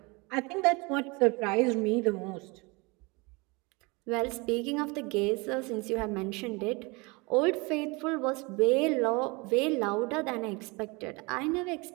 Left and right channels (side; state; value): left; quieter; 27.1 dB